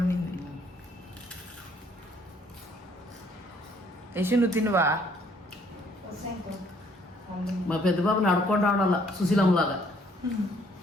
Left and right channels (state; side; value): normal; both; correlation 0.63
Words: ఉండింది. యశు నువ్వు తినువా? మా పెద్ద బాబుని అడుక్కొని రావడాల సుశీలమ్మలాగా.